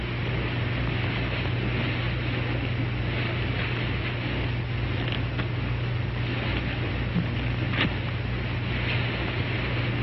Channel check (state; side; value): identical; both; correlation 1.00